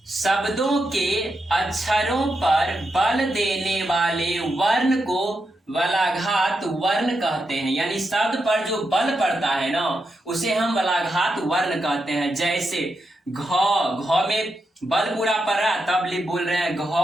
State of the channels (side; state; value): both; normal; correlation 0.85